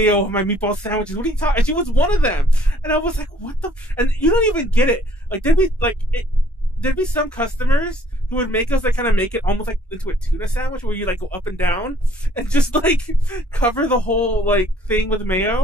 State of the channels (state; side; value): normal; both; correlation 0.61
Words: on my meatball sandwiches. What are you talking?" And she was one of them. And I was like, "What the?" And you don't even get it. Like there'd be some customers who would make us like kind of make it almost like into a tuna sandwich where you like go up and down and just like cover the whole like thing with